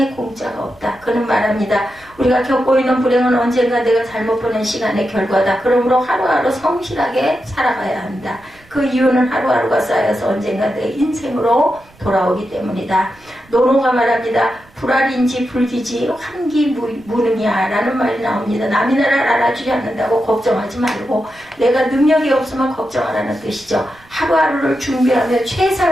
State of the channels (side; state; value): right; noise; rumble, 28 dB below the sound